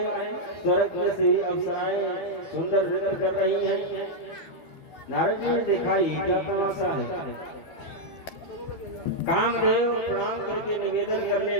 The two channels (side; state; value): right; late; 12 ms